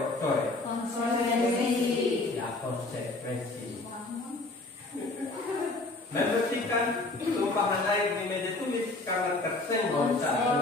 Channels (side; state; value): right; quieter; 3.1 dB